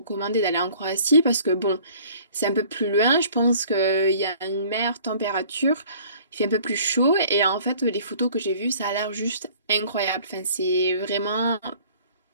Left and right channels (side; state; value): both; inverted; correlation -0.52